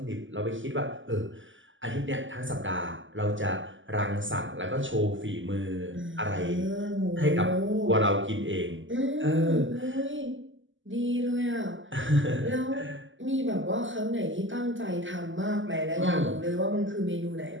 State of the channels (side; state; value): left; late; 0.55 ms